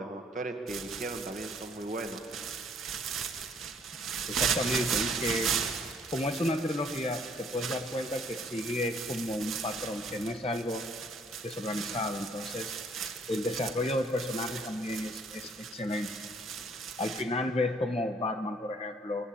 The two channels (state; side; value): normal; both; correlation 0.62